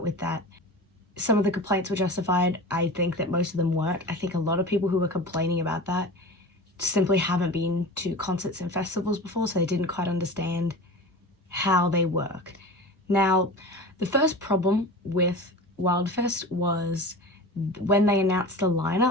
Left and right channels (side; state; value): both; normal; correlation 0.33